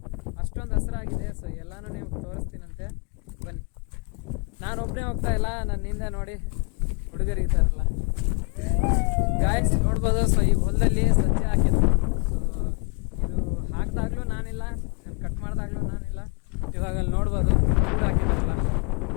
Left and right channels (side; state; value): right; quieter; 35.6 dB